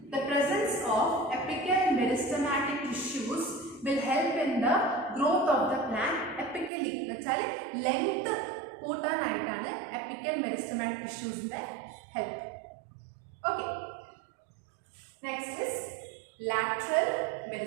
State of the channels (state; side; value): drops out; left; at 6.7 s